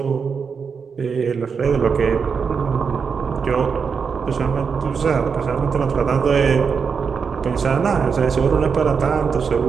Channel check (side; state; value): left; quieter; 5.9 dB